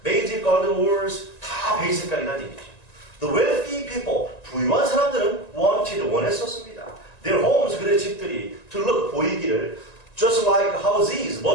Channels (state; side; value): late; right; 1.9 ms